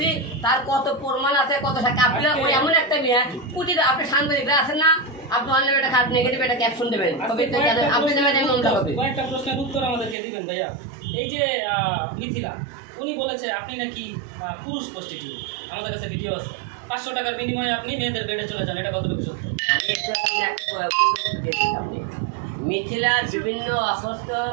তার কত প্রমাণ আছে, কত সাক্ষী। আপনি ওই এমন একটা মেয়ে প্রতিটা, আপনি সাংবাদিকরা আছেন না, আপনি অনলাইনে একটা খারাপ নেগেটিভ একটা ক্যাপশন দেবেন, আপনি দেবেন মামলা হবে। কয়েকটা প্রশ্নের উত্তর আমাদেরকে দিবেন ভাইয়া। এই যে মিথিলা উনি বলেছে আপনি নাকি পুরুষ প্রস্টিটিউট, আমাদের কাছে ভিডিও আছে, 500 টাকার বিনিময়ে আপনি মেয়েদের বেডে চলে যান, এটা কতটুকু সত্য? আমি একটু একটা প্রশ্ন দিয়েছি আপনি। মিথিলার বিভিন্ন অস্বস্থ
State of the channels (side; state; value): left; drops out; at 10.2 s